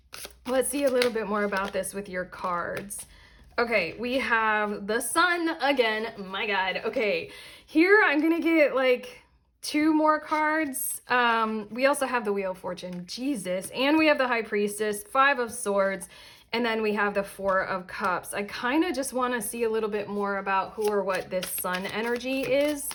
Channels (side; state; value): both; identical; correlation 1.00